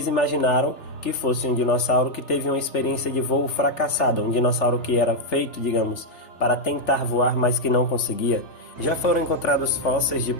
imaginaram que fosse um dinossauro que teve uma experiência de voo fracassada, um dinossauro que era feito, digamos, para tentar voar, mas que não conseguia. Já foram encontrados fósseis de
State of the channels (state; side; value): late; right; 3.4 ms